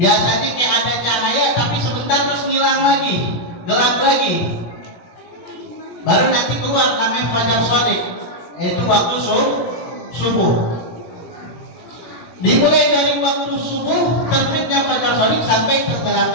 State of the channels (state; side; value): late; right; 17 ms